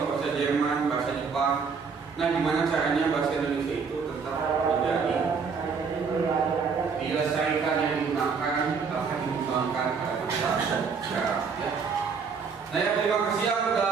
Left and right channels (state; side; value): quieter; left; 5.5 dB